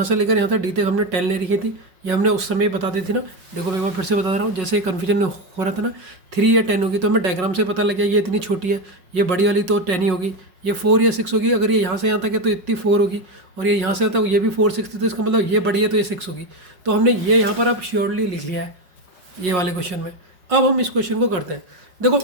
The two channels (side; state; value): left; late; 5.4 ms